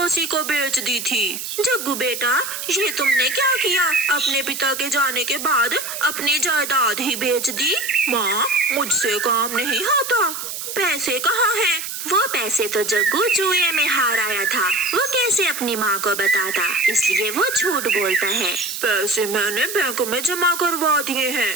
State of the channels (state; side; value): noise; right; hiss, 6 dB below the sound